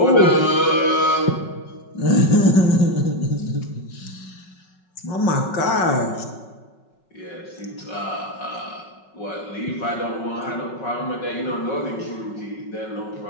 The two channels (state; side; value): late; right; 5.4 ms